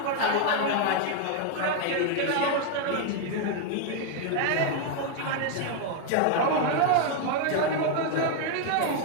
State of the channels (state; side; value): different; both; correlation 0.00